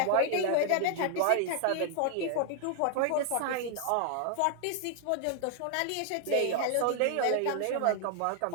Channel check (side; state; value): both; different; correlation 0.00